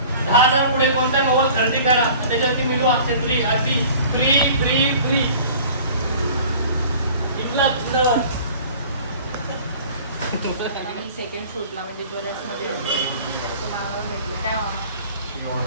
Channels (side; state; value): both; inverted; correlation -0.46